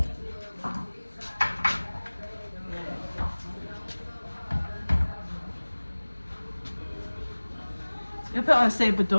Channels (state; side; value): inverted; both; correlation -1.00